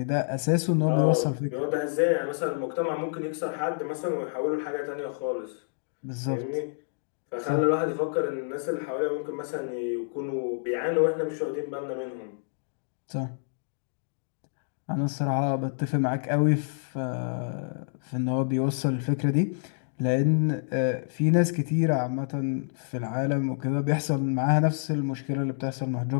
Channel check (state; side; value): silent; right; digital silence